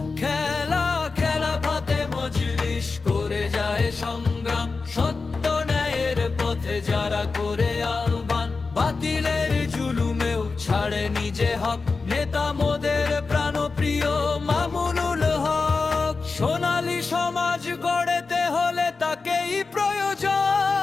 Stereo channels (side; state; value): right; quieter; 4.2 dB